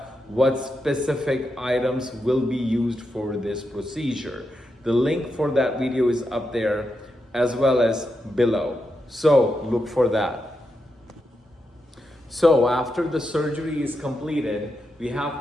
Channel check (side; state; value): both; normal; correlation 0.86